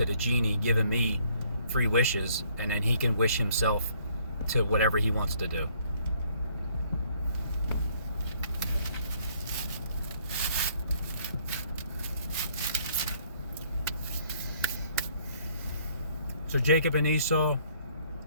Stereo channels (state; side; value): inverted; both; correlation -0.64